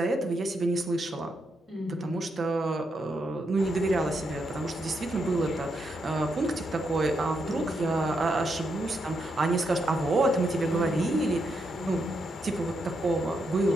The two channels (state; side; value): normal; both; correlation 0.81